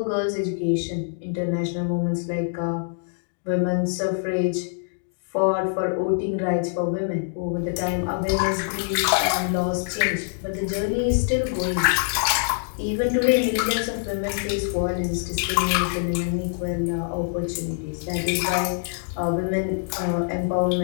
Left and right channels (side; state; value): right; silent; digital silence